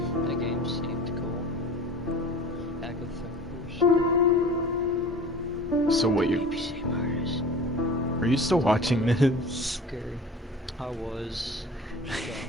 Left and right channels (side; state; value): both; normal; correlation 0.39